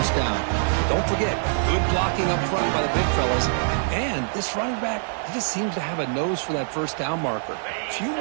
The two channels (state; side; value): silent; left; 62 dB below the other